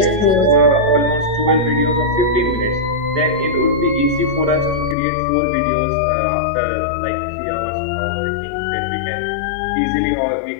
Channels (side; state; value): right; drops out; at 5.0 s